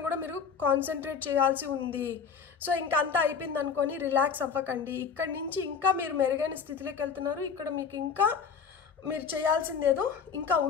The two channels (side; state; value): right; quieter; 6.2 dB